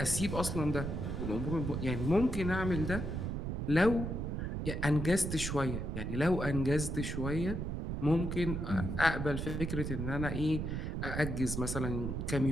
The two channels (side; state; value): right; noise; rumble, 3 dB below the sound